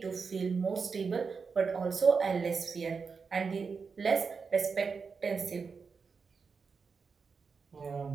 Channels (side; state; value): left; quieter; 5.2 dB